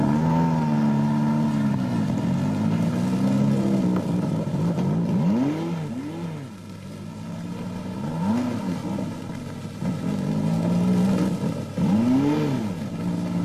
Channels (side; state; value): both; identical; correlation 1.00